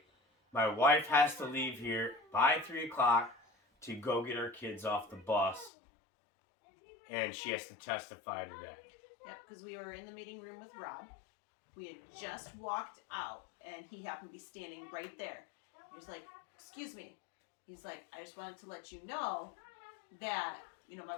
my wife has to leave here by 3 o'clock to go get her kids off the bus, and she has to testify today"? Yep, because we were in the meeting room with Rob. We had just walked out, and he happened to be standing right there. He was like, "Excuse me." He's like, "I just wanted to let you know that, my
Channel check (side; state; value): right; drops out; at 5.7 s